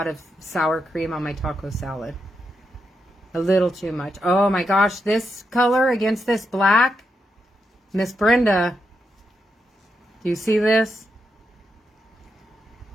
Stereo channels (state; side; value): normal; both; correlation 0.84